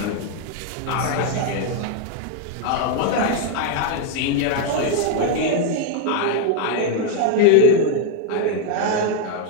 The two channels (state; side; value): different; both; correlation 0.00